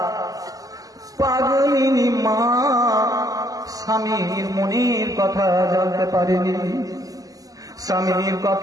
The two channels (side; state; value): left; late; 0.17 ms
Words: পাগলিনী মা স্বামীর মনের কথা জানতে পারেনি, স্বামীর